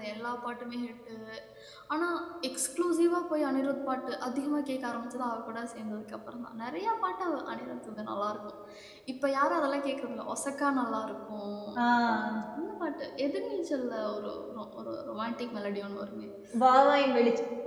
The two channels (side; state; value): both; identical; correlation 1.00